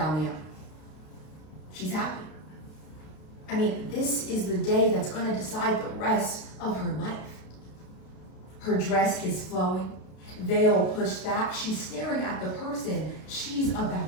the aisle. She's happy. I mean, this is the day that's going to decide the rest of her life. Her dress is flowing, veil pushed back. She's staring at the person she's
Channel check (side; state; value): right; late; 32 ms